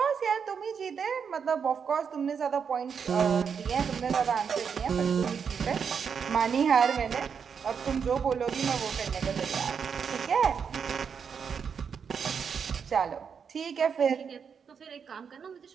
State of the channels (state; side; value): quieter; left; 6.6 dB